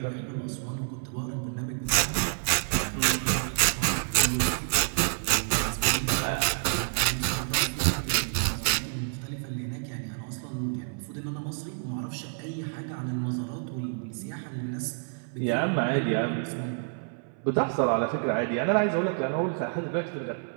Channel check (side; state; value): left; silent; 59 dB below the other